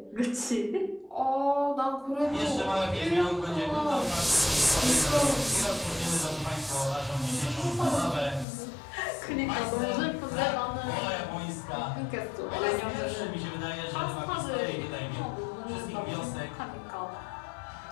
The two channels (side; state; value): right; drops out; at 8.5 s